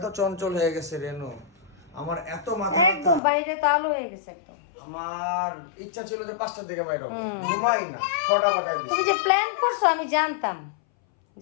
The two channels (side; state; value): right; drops out; at 3.2 s